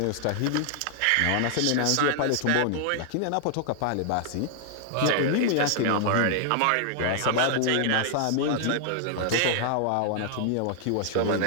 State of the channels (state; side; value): different; both; correlation -0.01